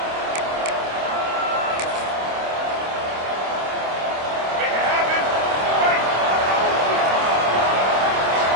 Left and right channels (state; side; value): late; left; 26 ms